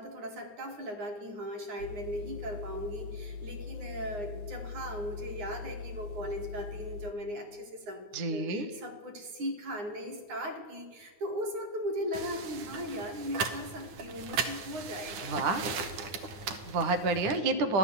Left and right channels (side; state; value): left; late; 9.5 ms